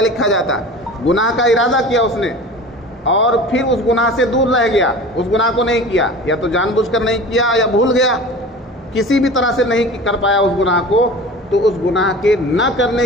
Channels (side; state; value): both; normal; correlation 0.37